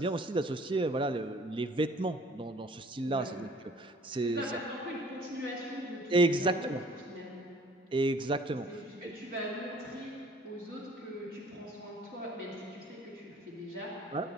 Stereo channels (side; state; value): both; normal; correlation 0.53